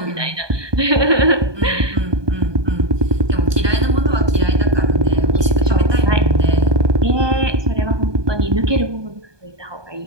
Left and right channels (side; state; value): left; late; 1.2 ms